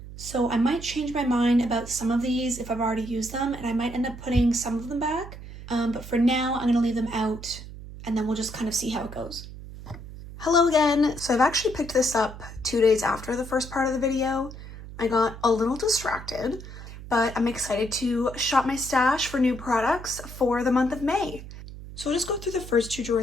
So I might change my mind about some of these if I've already used them, and I might end up putting some of them back. But for now, I'm going to leave them out, and then we'll just kind of see how it goes. Hello again. So I've actually picked this up 2 days after the first part of the video. I got a little distracted, but I'm excited to shop my stash for new products for the month of May. So I'll just go through the first 2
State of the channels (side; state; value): right; noise; hum, 13 dB below the sound